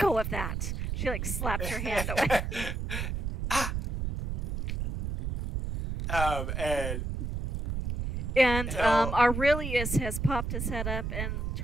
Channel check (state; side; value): noise; right; rumble, 2 dB below the sound